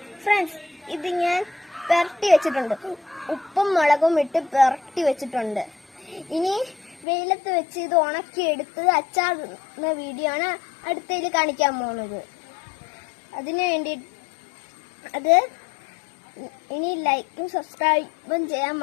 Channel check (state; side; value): drops out; right; at 7.1 s